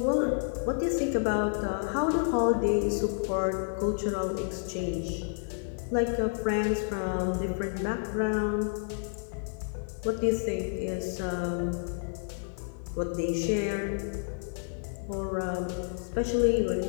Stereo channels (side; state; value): right; silent; 58 dB below the other